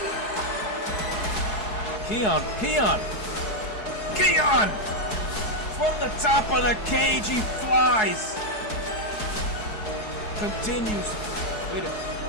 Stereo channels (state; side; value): late; right; 4.7 ms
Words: Keon! From the top of the cage, he flies. Continues. Wait a minute.